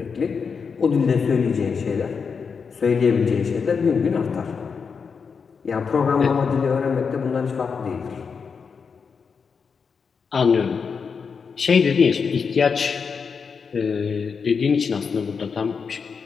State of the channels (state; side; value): quieter; right; 5.7 dB